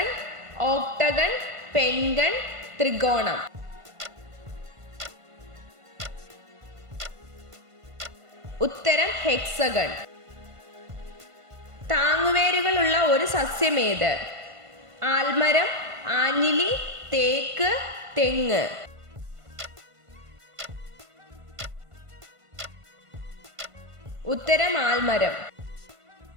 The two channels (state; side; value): late; left; 1.5 ms